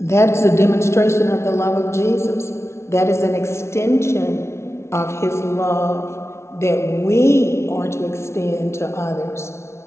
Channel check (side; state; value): right; late; 0.13 ms